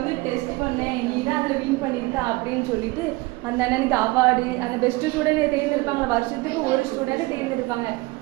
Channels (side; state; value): left; quieter; 22.3 dB